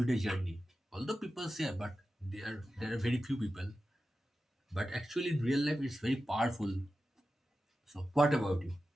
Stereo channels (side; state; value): both; normal; correlation 0.93